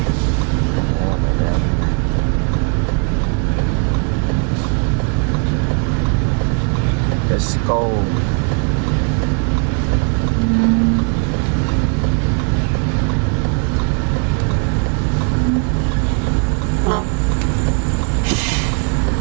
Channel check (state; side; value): quieter; left; 38.7 dB